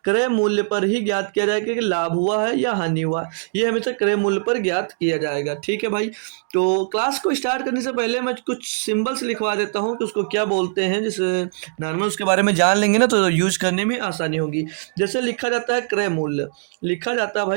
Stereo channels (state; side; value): silent; left; digital silence